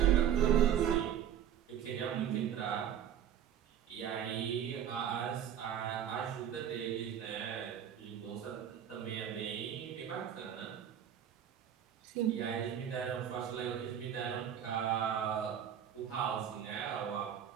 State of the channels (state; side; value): quieter; left; 9.5 dB